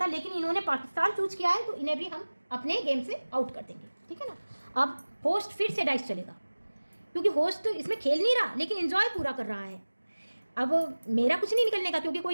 लेकिन इन्होंने पाकिस्तान चूज किया है, तो इन्हें भी हम अपने गेम से आउट कर देंगे, ठीक है ना। अब होस्ट फिर से डाइस चलेगा, क्योंकि होस्ट इसमें खेल नहीं रहा लेकिन एंजॉय पूरा कर रहा है। अब मेरा कुछ नहीं निकलने का, क्योंकि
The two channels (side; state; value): both; inverted; correlation -1.00